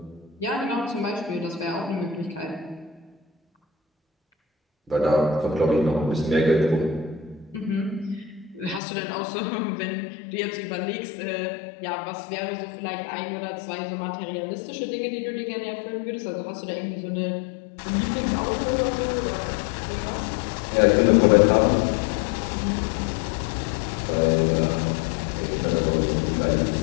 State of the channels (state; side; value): drops out; right; at 8.8 s